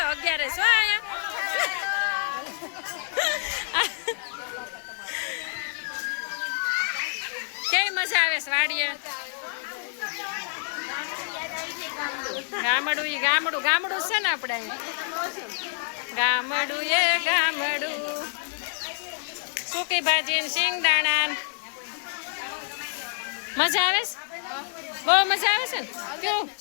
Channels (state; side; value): silent; right; 56 dB below the other